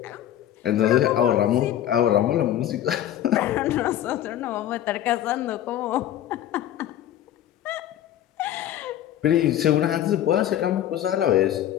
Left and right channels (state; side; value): quieter; right; 11.6 dB